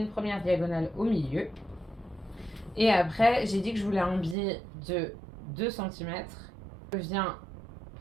première diagonale au milieu. Et après, j'ai dit que je voulais un biais de 2 cm. Je viens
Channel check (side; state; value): left; drops out; at 4.4 s